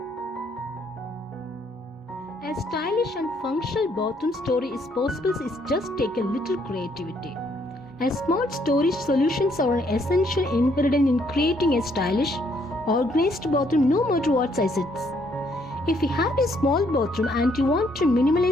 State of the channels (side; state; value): both; normal; correlation 0.69